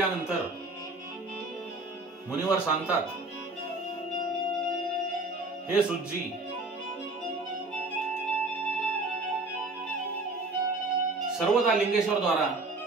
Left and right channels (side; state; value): left; quieter; 3.1 dB